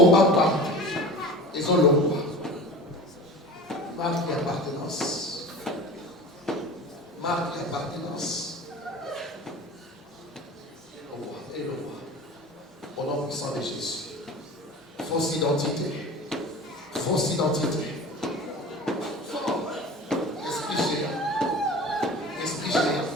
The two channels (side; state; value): both; normal; correlation 0.37